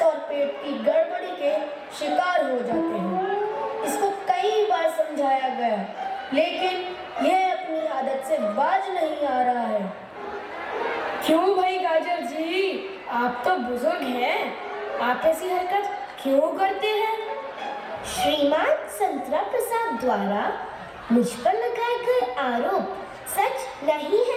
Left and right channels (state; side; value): identical; both; correlation 1.00